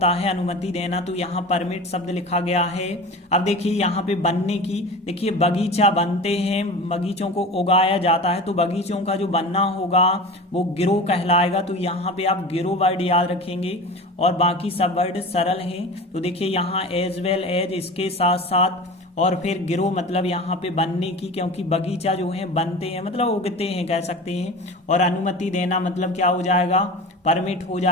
है अनुमति देना, तो यहाँ परमिट शब्द लिखा गया है। अब देखिए यहाँ पे बनने की, देखिए बगीचा बनते हैं, बगीचों को उगाया जाता है, तो बगीचों का जो बनना होगा वो गिरो कहलाएगा, तो यहाँ पे आप गिरो वर्ड याद रखेंगे, और बाकी सब वर्ड सरल हैं। तो देखिए यहाँ एज वेल एज इसके साथ साथ, और फिर गिरो मतलब यहाँ पे बनने की, क्योंकि बगीचा जो है बनते हैं मतलब उगते हैं कह सकते हैं। और अनुमति देना मतलब क्या हो जाएगा, परमिट हो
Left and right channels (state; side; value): normal; both; correlation 0.33